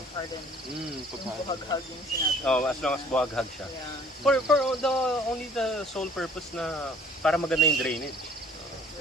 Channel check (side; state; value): both; normal; correlation 0.54